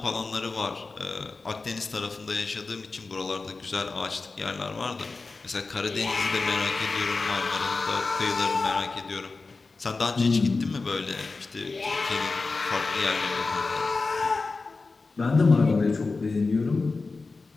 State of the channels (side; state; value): right; quieter; 3.9 dB